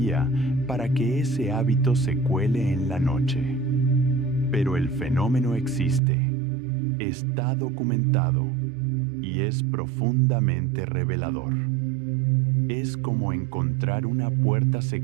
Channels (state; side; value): drops out; left; at 6.0 s